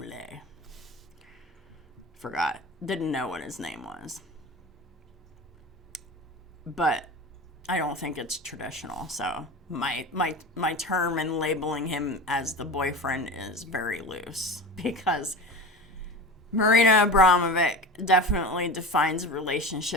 Forgot. Didn't know what his name was. But I don't think it's traditional, so my term in labeling him as the boyfriend is very loose, because Marina Abramovic definitely defines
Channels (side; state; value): both; normal; correlation 0.31